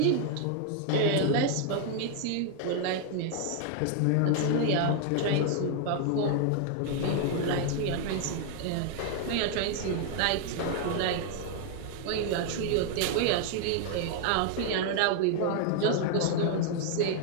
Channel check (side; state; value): both; different; correlation 0.00